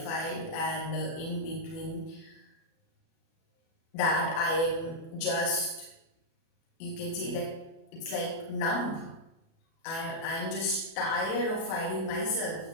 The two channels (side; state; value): right; late; 36 ms